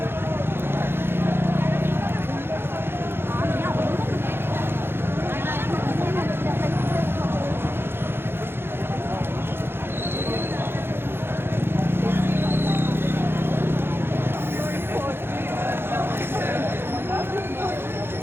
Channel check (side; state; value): left; late; 0.11 ms